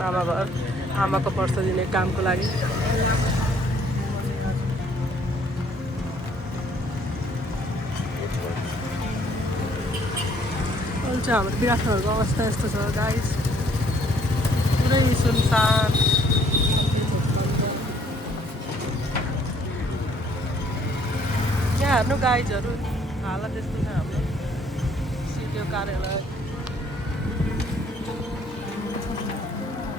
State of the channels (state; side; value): normal; both; correlation 0.62